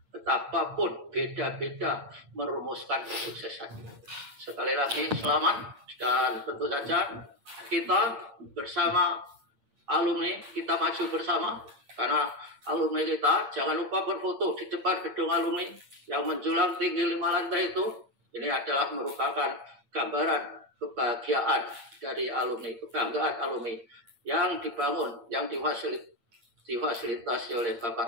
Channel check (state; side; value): late; left; 8.7 ms